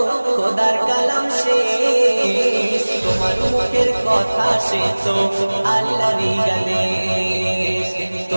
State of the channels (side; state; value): both; inverted; correlation -1.00